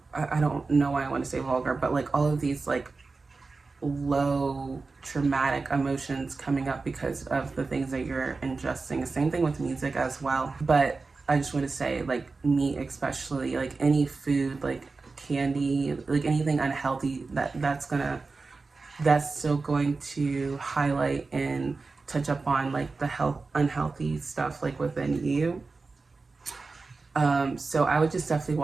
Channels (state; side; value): quieter; left; 4.0 dB